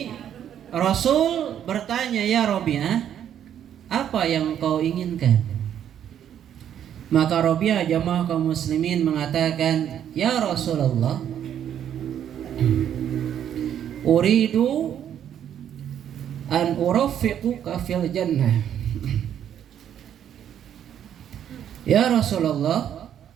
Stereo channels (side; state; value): left; quieter; 9.8 dB